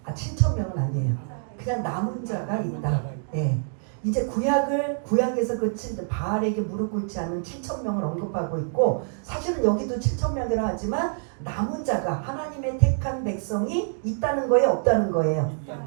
7,000명은 아니에요. 그냥 남은 자가 있다. 네. 이제 구약에서 바알에게 무릎 꿇지 않는 7,000명을 언급하고 있고, 사실은 여기도 7,000명이라 하지만 남은 자가 하나님의 택한 백성이 있다는 거예요, 없다는 거예요?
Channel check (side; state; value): left; silent; digital silence